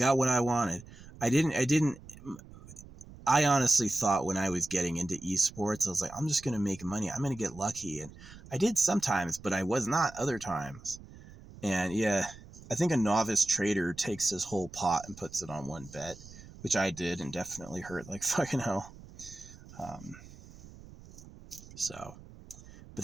what I wanted. I honestly thought when I was getting into esports, I was like, I'm just going to make money. I'm going to get lucky. And I did sometimes, but I was not other times. And yeah, I think a novice trader takes his whole pot and puts it on one bet, which I did and definitely hurt like fucking hell. Um, so, but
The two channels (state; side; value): noise; right; rumble, 18 dB below the sound